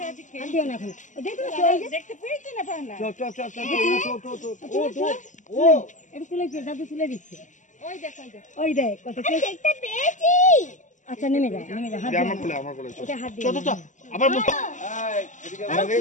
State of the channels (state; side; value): late; right; 0.36 ms